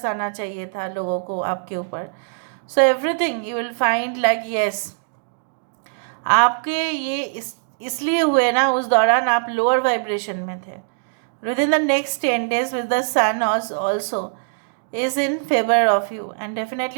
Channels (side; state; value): left; silent; digital silence